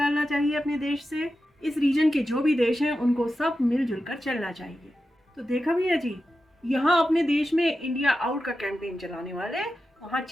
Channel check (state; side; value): normal; both; correlation 0.91